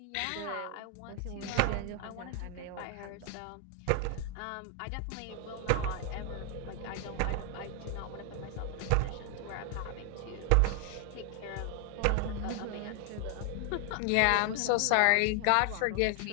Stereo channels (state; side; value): different; both; correlation 0.00